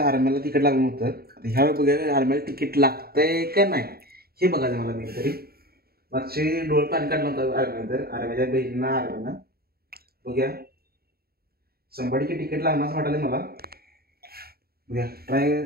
आर्म्याला तिकीट लागलं होतं. आता ह्या वेळी बघूया आर्म्याला तिकीट लागतंय का नाही हे बघायचं मला. मी तरी मागचे डोळे पाणी काढलं होतं आर्म्यानंतर आर्म्याच्या बहिणींना आर्म्यानं बघूया 100 तिकीट लागणार असं वाटायला मला. बघूया ट्राय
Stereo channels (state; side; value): late; left; 0.45 ms